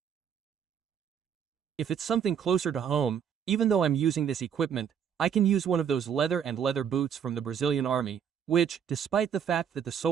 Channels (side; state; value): left; quieter; 8.1 dB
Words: If it's something closer to home, even though I'm using this equipment, I can use one of those leather boots from the Brazilian army, which, despite the fact that the